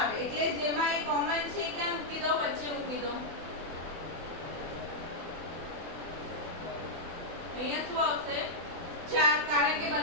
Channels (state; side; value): late; left; 24 ms